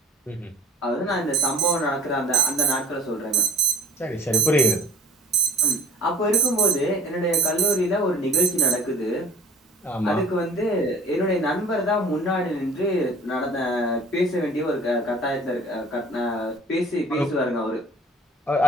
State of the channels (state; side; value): normal; both; correlation 0.48